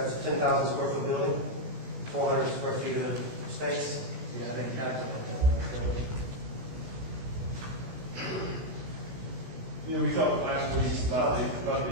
a 10,000 square foot building, 400 square feet of space. Yeah, I think calculate You know, we talked last week about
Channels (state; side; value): late; left; 16 ms